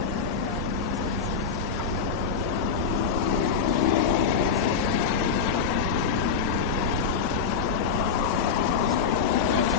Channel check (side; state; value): right; quieter; 5.9 dB